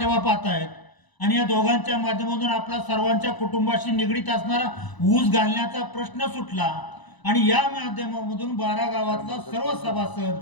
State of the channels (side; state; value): right; late; 1.0 ms